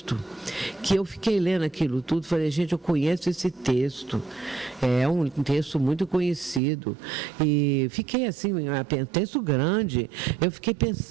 que eu fiquei lendo aquilo tudo, falei, gente, eu conheço esse texto, é um texto muito conhecido, e fiquei assim, um texto grande, eu fiquei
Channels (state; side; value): drops out; left; at 6.6 s